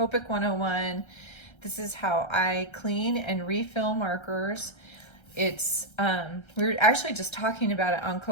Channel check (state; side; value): late; right; 1.3 ms